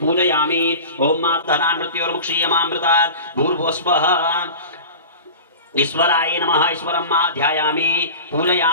ओम मात्तनान्मृत्योर्मुक्षीयमामृतात् भूर्भस्वः ईश्वराय नमः। ईश्वरं मा ध्यायामि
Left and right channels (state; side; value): inverted; both; correlation -0.35